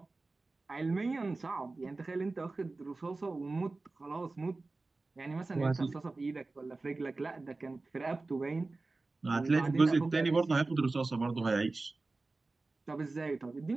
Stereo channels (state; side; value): quieter; left; 3.4 dB